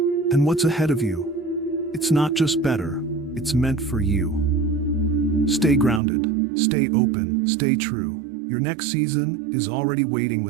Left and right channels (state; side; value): drops out; left; at 6.0 s